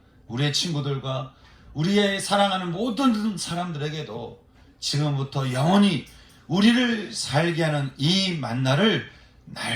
우리의 친구들과 우리의 사랑하는 모든 사람들에게도 지금부터 영원히 우리를 살게 하는 이 만나를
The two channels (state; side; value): identical; both; correlation 1.00